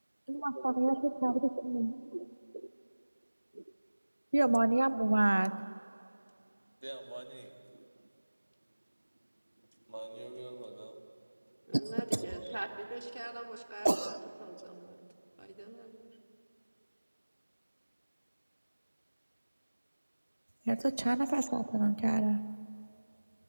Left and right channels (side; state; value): both; inverted; correlation -1.00